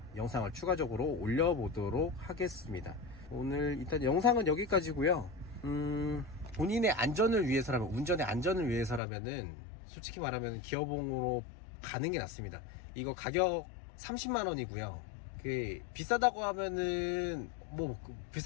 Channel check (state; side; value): drops out; right; at 9.0 s